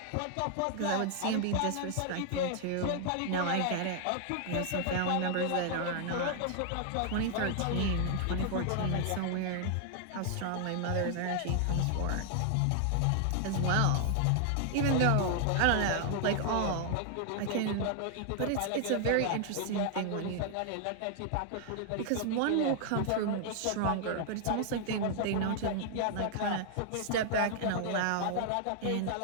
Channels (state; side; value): different; both; correlation 0.00